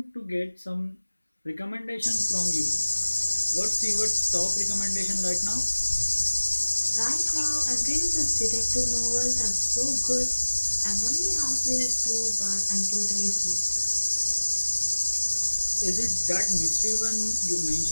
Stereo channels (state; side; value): inverted; both; correlation -1.00